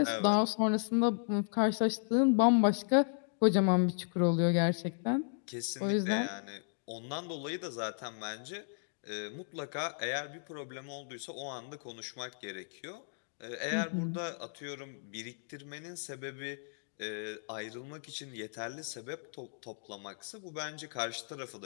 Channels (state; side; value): silent; right; digital silence